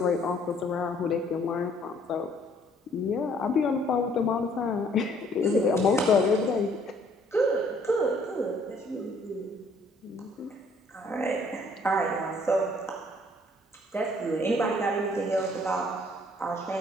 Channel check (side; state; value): both; normal; correlation 0.61